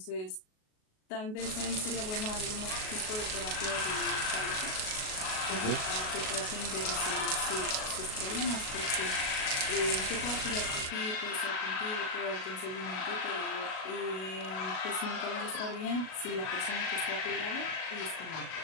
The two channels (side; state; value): right; late; 37 ms